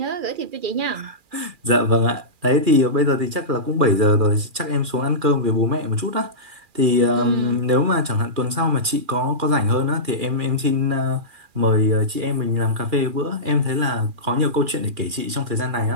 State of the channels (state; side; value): late; left; 2.4 ms